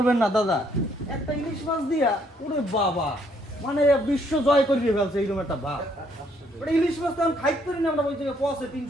না দাদা, একটা ইলিশ মাছ দিয়া ওরে বাবা, মানে বিশ্ব জয় করিয়ে ফেলছে এইরকম একটা ভাব। ওটা ইলিশ মাছ তো আমি খাইতে পারি না, আমরা ওই জায়গায় পচে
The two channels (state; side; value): normal; both; correlation 0.68